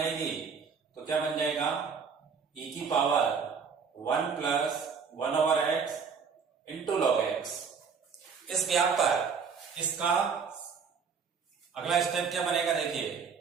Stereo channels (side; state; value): left; quieter; 5.9 dB